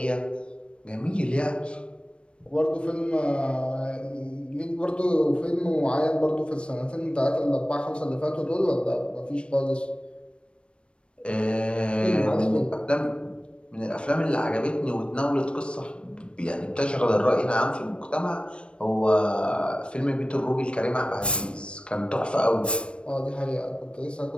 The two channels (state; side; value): late; right; 0.058 ms